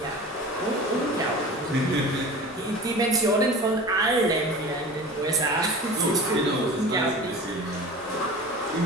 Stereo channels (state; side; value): normal; both; correlation 0.36